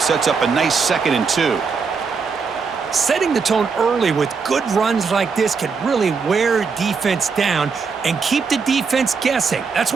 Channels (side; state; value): left; quieter; 5.3 dB